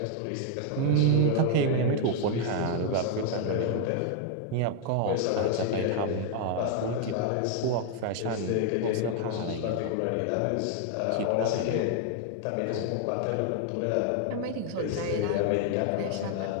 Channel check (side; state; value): both; different; correlation 0.00